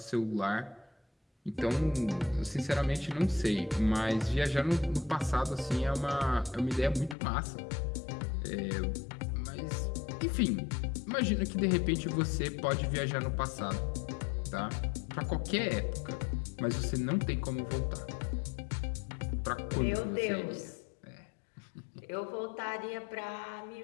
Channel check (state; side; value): drops out; right; at 7.2 s